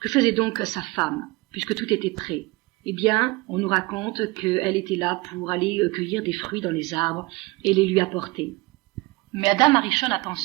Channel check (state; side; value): quieter; left; 23.4 dB